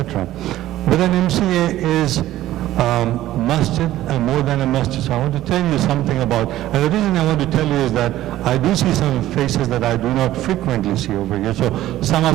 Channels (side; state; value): left; quieter; 14.3 dB